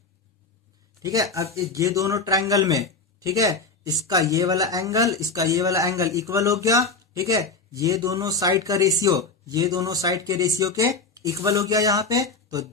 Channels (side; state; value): right; quieter; 4.1 dB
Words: ठीक है, अब ये दोनों ट्रायंगल में, ठीक है, इसका ये वाला एंगल, इसका ये वाला एंगल इक्वल हो गया। ठीक है, ये दोनों साइड का रेशियो, ये दोनों साइड के रेशियो के इक्वल हो गया यहाँ पे। तो